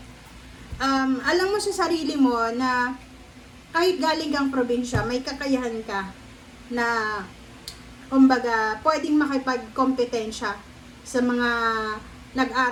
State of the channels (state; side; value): identical; both; correlation 1.00